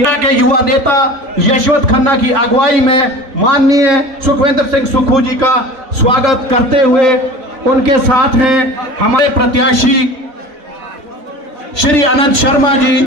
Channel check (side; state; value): left; late; 3.3 ms